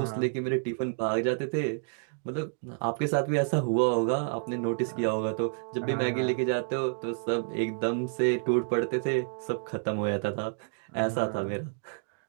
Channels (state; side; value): silent; left; digital silence